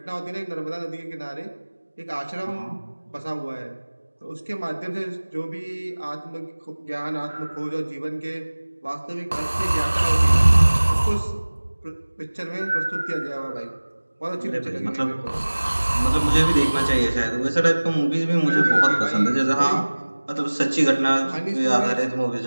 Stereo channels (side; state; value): both; inverted; correlation -1.00